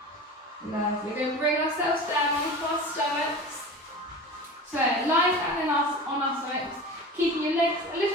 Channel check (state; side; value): normal; both; correlation 0.33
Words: Lovely. We're going to bring ourselves down onto our stomachs. So lie down on our stomachs, keeping your legs a